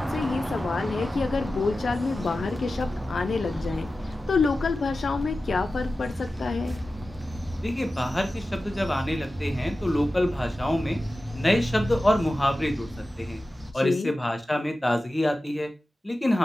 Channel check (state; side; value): normal; both; correlation 0.94